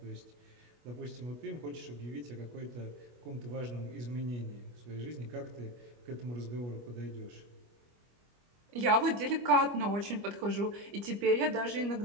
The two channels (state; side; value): late; left; 25 ms